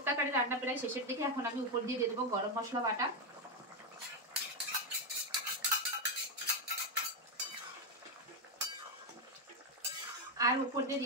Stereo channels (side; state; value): both; normal; correlation 0.05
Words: কারি রান্না প্রায় শেষের দিকে, এখন আমি উপর দিয়ে দেবো গরম মশলা বাটা, আর উপর